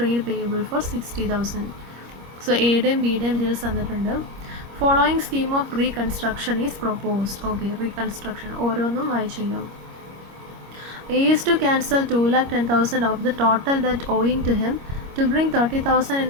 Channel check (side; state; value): left; late; 25 ms